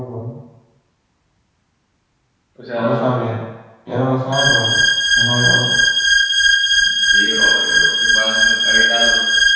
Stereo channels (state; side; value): identical; both; correlation 1.00